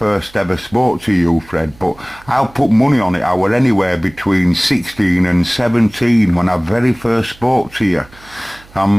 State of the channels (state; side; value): noise; right; hum, 25 dB below the sound